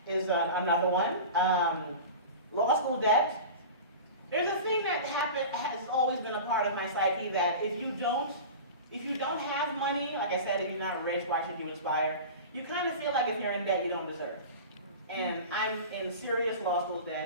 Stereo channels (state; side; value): inverted; both; correlation -0.32